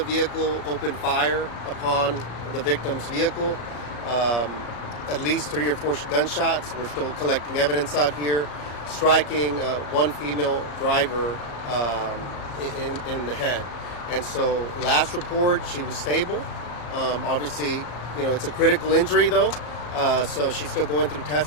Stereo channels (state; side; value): late; right; 34 ms